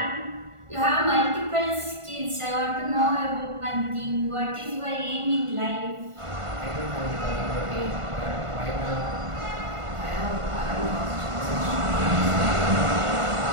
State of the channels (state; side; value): late; left; 1.5 ms